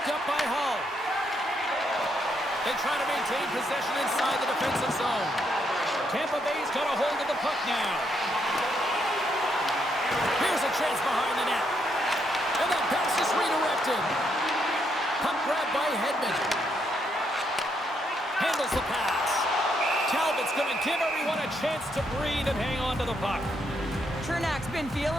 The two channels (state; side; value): normal; both; correlation 0.76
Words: up by Hull. They try to maintain possession inside the defensive zone. Tampa Bay's got a hold of the puck now. Here's a chance behind the net. And that pass is redirected. Puck grab by Hedman. Handles the pass. Talbot's going to give everyone a chance to breathe and hang on to the puck. Chernak's been